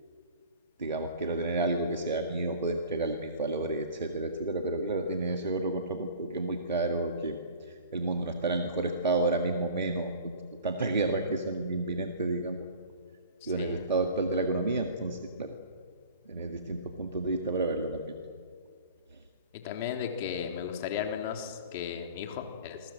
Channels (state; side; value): inverted; both; correlation -0.43